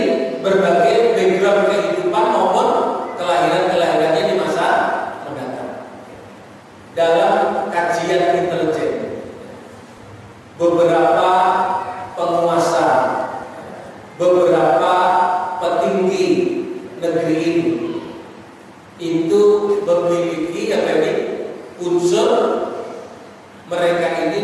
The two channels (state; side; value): identical; both; correlation 1.00